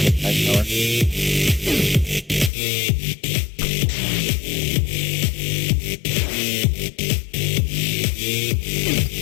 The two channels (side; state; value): right; drops out; at 2.5 s